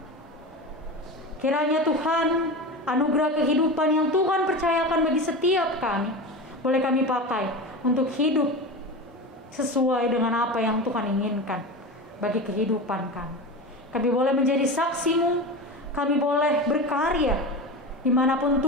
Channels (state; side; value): normal; both; correlation 0.26